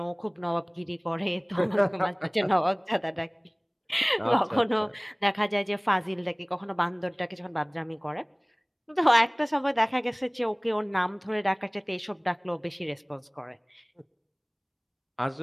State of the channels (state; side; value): identical; both; correlation 1.00